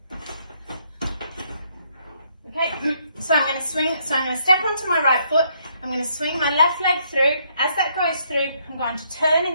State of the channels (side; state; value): both; inverted; correlation -0.71